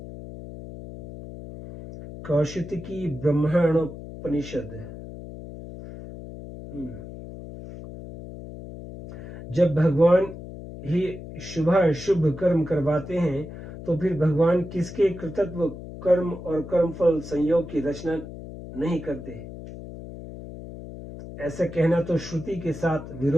कौशिकी ब्रह्मणोपनिषद। जब भगवान ही शुभ कर्म करवाते हैं तो फिर भगवान किसके कृतत्व कर्म और कर्मफल संयोग की रचना नहीं करते। ऐसा कहना तो श्रुति के साथ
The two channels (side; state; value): left; noise; hum, 12 dB below the sound